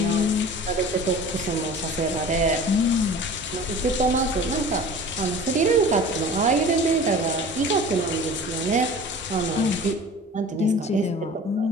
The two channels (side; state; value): both; normal; correlation 0.41